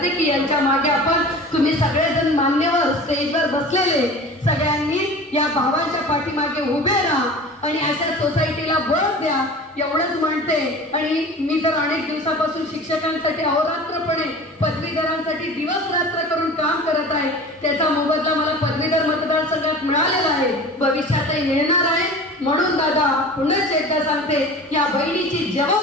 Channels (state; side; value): normal; both; correlation 0.38